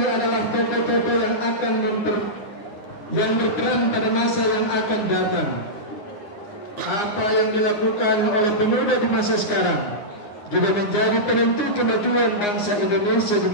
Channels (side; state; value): right; late; 9.7 ms